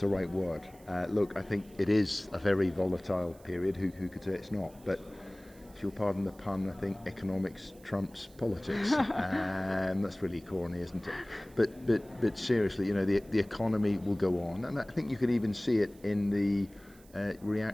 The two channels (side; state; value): right; noise; hiss, 26 dB below the sound